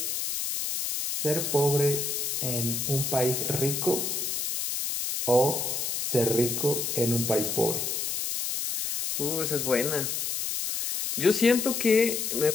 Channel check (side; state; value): left; noise; hiss, 1 dB below the sound